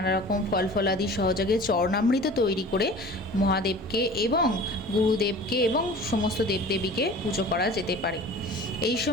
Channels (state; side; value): normal; both; correlation 0.41